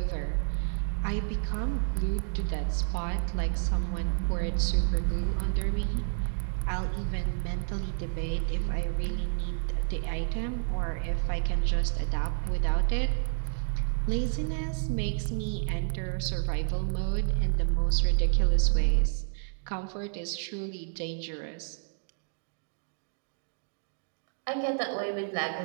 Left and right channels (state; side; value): silent; left; digital silence